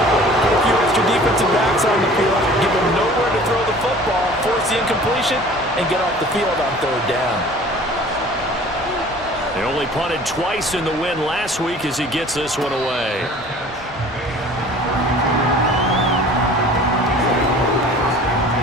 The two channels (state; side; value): normal; both; correlation 0.47